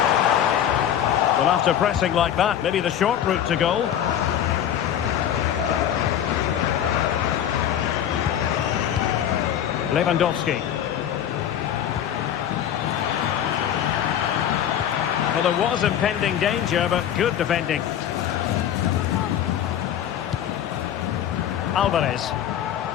Well, after pressing like that, maybe the short route to goal. Lewandowski. Well, there was impending danger, but good defending. Alvarez.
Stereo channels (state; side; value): quieter; right; 10.2 dB